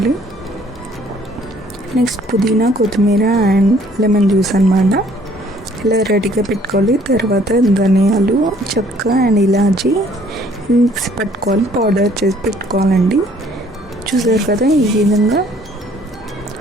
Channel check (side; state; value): both; normal; correlation 0.60